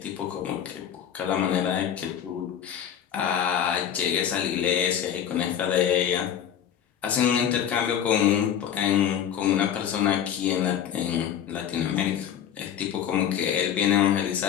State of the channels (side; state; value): right; quieter; 9.5 dB